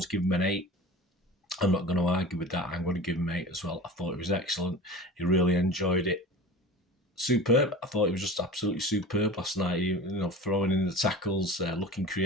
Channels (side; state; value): both; normal; correlation 0.36